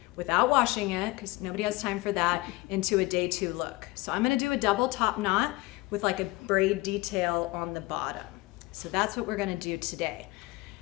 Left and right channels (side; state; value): right; quieter; 21.0 dB